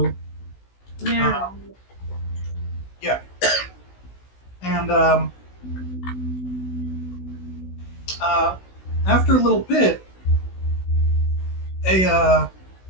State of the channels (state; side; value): late; right; 16 ms